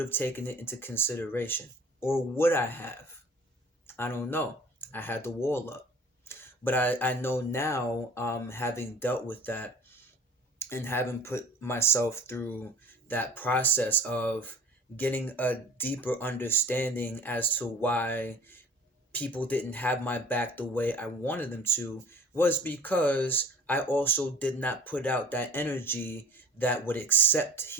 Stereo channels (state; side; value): normal; both; correlation 0.45